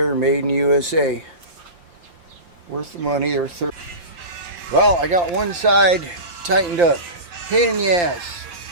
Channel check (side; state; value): left; late; 5.8 ms